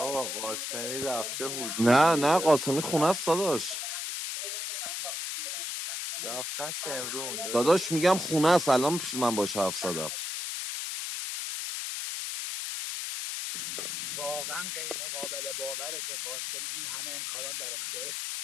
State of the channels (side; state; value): left; noise; hiss, 4 dB below the sound